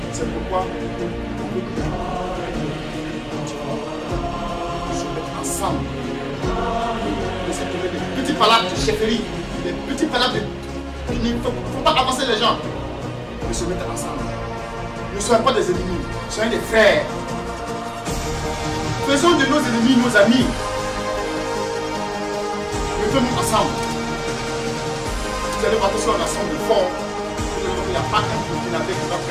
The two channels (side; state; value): both; identical; correlation 1.00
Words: C'est pourquoi on veut se mettre ensemble. Laisser tomber des petits palabres de chefferie, des petits palabres il ne faut pas avancer les gens. Mais se mettre ensemble. Ne soyons pas des ennemis, soyons des frères. Faisons de nos ennemis nos amis. Mettons-nous ensemble. Vous allez voir que si on ensemble fort, il n'y a pas un Burkinabé qui va